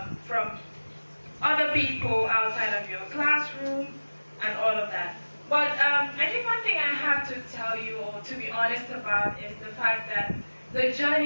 from other people outside of your classroom and all of that. But I think one thing I have to tell you, or to be honest about, is the fact that the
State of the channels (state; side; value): inverted; both; correlation -1.00